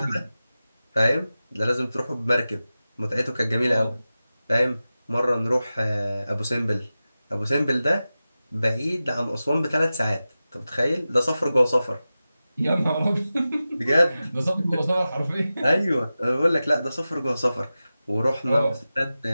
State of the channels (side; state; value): both; inverted; correlation -0.95